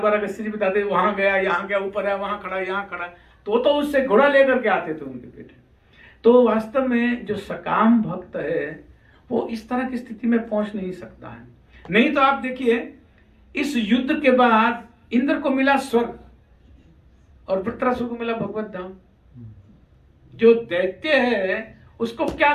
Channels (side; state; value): both; identical; correlation 1.00